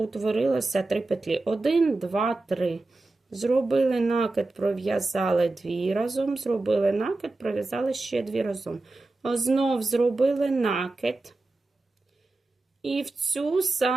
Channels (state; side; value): quieter; left; 3.1 dB